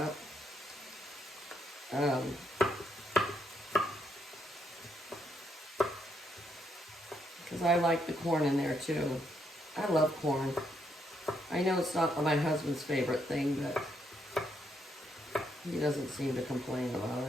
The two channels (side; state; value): both; normal; correlation 0.76